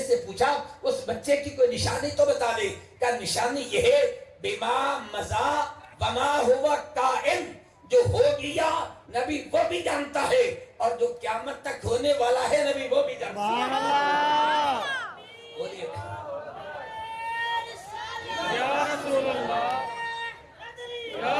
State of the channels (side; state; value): both; identical; correlation 1.00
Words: سے پوچھا اس بچے کی کوئی نشانی تو بتا دے. کہ نشانی یہ ہے بما مزا وما ہوا کائن، جو ہو گیا نبی وہ بھی جانتا ہے اور جو قیامت تک ہونے والا ہے نبی وہ بھی جانتا ہے. بولیے یا رسول اللہ یا